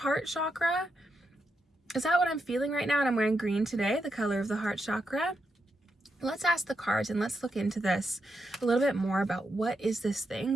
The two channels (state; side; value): normal; both; correlation 0.83